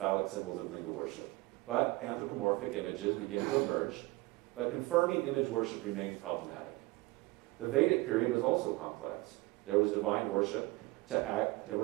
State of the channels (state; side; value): quieter; left; 21.8 dB